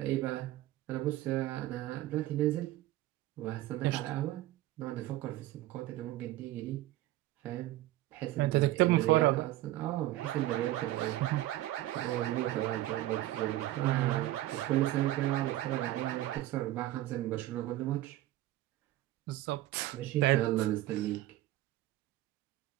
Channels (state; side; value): quieter; left; 15.6 dB